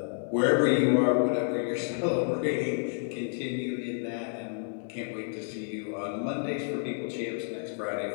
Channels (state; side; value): silent; right; digital silence